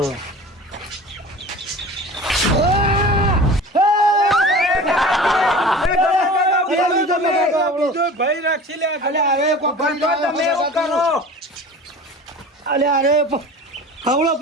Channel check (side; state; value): both; normal; correlation 0.38